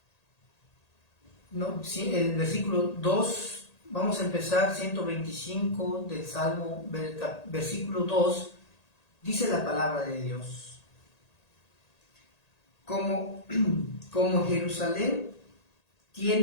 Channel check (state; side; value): late; right; 1.8 ms